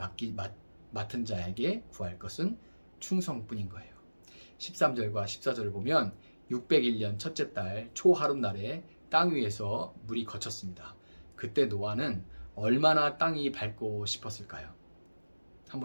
맡은 자에게 구할 것은 충성뿐인 거예요. 13절과 14절을 보면 601년 첫째 달 초하룻날에 땅 위에서 물이 거쳤습니다. 그때 노아는 얼마나 땅이 밝고 싶었을까요?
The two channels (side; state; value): both; inverted; correlation -1.00